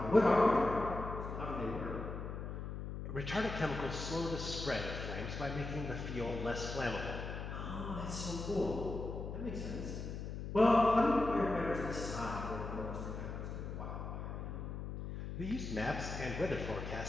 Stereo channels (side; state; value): left; noise; hum, 6 dB below the sound